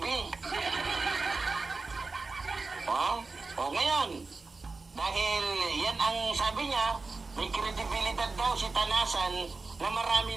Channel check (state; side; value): quieter; left; 3.8 dB